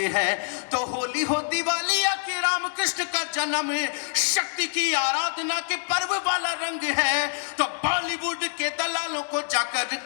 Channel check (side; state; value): right; silent; 61 dB below the other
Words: है। तो होली हो दिवाली या कि राम कृष्ण का जन्म, शक्ति की आराधना के पर्व वाला रंग है। तो बॉलीवुड के दलालों को जाकर